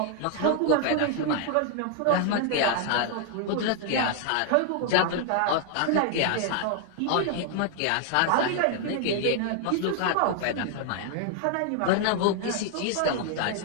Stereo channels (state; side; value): different; both; correlation 0.00